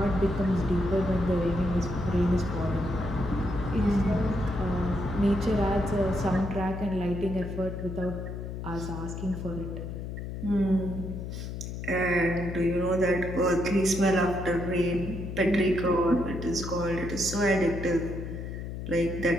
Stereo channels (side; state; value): left; noise; hum, 7 dB below the sound